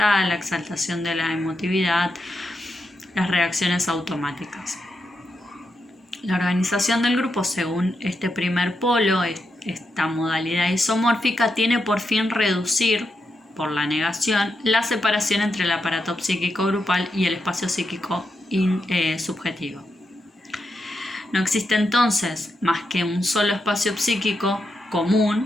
la exaltación de la emotividad, las reacciones automáticas. La organización del grupo, según este primer polo, esta modalidad isomórfica, tiene por fin reducir, por la negación, la separación entre el aparato psíquico grupal y el espacio psíquico subjetivo. No existe entonces más que un solo espacio psíquico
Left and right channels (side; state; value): both; normal; correlation 0.85